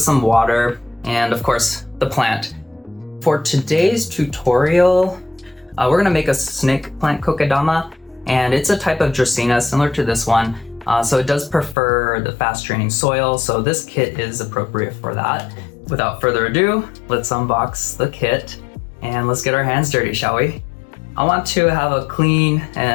some water and of course the plant. For today's tutorial, we're gonna make a snake plant kokedama, and it's a type of dracaena similar to this one. So it does prefer the fast draining soil, so this kit is appropriate for that. Without further ado, let's unbox the kit and let's get our hands dirty, shall we? I want to have a clean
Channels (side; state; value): right; drops out; at 11.8 s